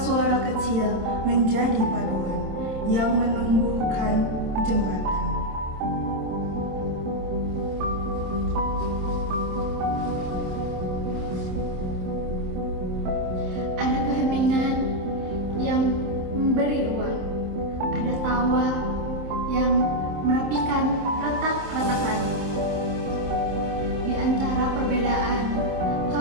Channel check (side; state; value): left; late; 27 ms